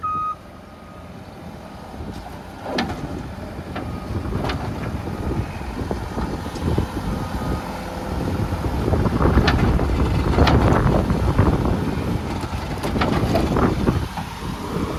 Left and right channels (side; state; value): both; identical; correlation 1.00